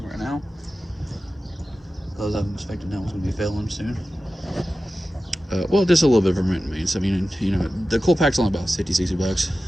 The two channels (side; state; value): both; normal; correlation 0.94